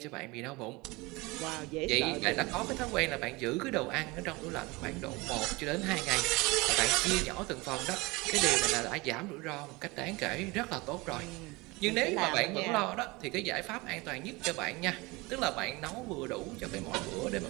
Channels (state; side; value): quieter; left; 23.8 dB